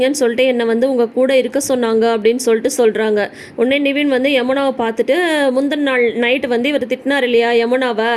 சொல்லிட்டு என்னை வந்து உங்கள் கூட இருக்க சொன்னாங்க அப்படின்னு சொல்லிட்டு சொல்கிறாங்க. உடனே நிவின் வந்து யமுனாவை பார்த்துட்டு, முந்தின நாள் நைட்டு வந்து இவர் திட்டினார் இல்லையா யமுனாவை,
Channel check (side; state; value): both; identical; correlation 1.00